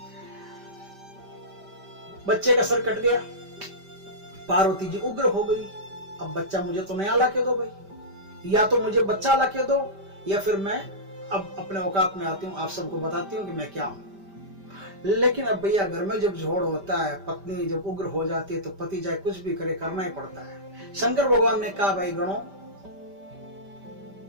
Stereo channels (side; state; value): left; late; 5.1 ms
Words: बच्चे का सर कट गया, पार्वती जी उग्र हो गई। अब बच्चा मुझे तो नया ला के दो भाई, या तो मुझे बच्चा ला के दो, या फिर मैं अब अपने औकात में आती हूँ, आप सबको बताती हूँ कि मैं क्या हूँ। लेकिन अब भैया घर में जब झोड़ होता है, पत्नी जब उग्र हो जाती है, तो पति चाहे कुछ भी करे करना ही पड़ता है। शंकर भगवान ने कहा, भाई गणों,